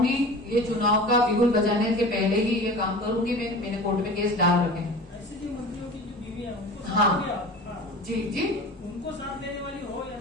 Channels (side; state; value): both; normal; correlation 0.37